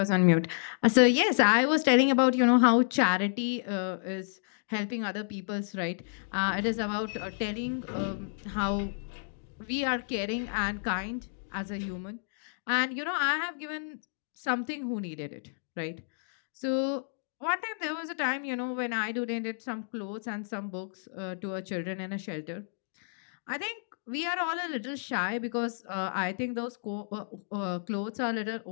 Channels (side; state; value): right; silent; digital silence